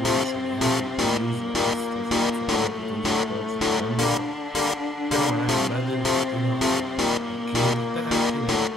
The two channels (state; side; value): normal; both; correlation 0.71